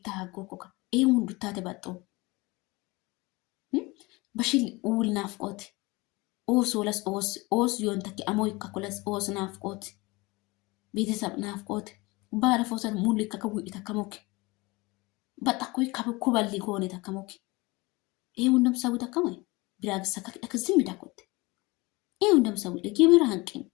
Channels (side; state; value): right; quieter; 23.6 dB